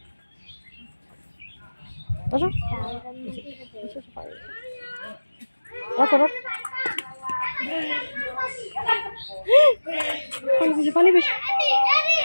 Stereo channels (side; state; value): both; inverted; correlation -1.00